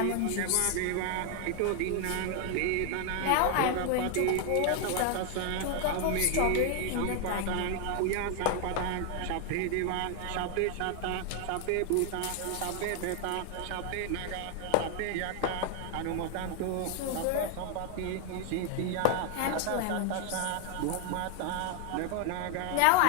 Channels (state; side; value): different; both; correlation 0.01